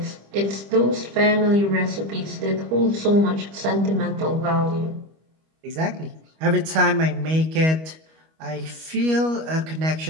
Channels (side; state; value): left; late; 25 ms